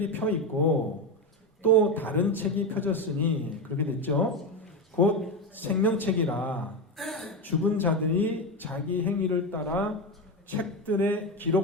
펴 있고 또 다른 책이 펴졌으니 그렇게 됐죠. 곧 생명책이라 죽은 자들이 자기 행위를 따라 책들에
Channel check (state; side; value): normal; both; correlation 0.15